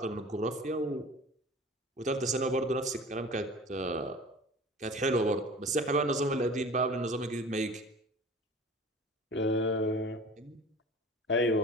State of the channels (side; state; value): both; normal; correlation 0.41